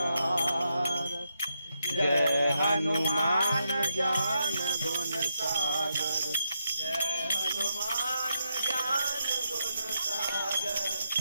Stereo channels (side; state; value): both; inverted; correlation -0.82